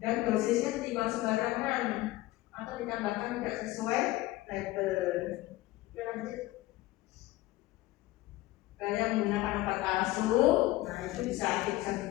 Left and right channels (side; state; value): right; quieter; 17.7 dB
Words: Dan dosisnya ditimbang sembarangan atau ditambahkan tidak sesuai label. Oke lanjut. Yang menggunakan obat palsu, nah itu bisa